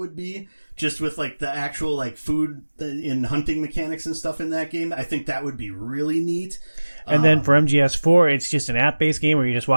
be, just with like the actual like food and hunting mechanics and stuff in that game. I think that would be really neat. And then for MGS4, it's just an app-based game where you just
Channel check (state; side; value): inverted; both; correlation -1.00